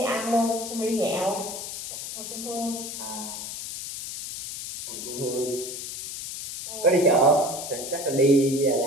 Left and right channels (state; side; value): noise; left; hiss, 8 dB below the sound